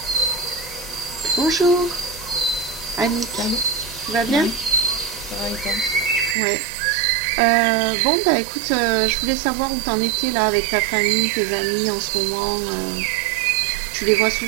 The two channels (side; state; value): left; drops out; at 6.4 s